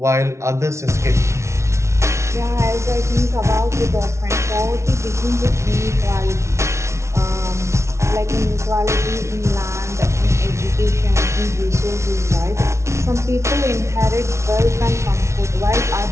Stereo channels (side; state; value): left; late; 0.13 ms